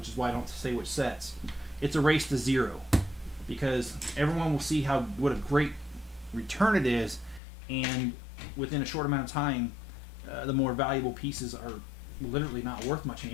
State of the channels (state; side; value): drops out; right; at 7.4 s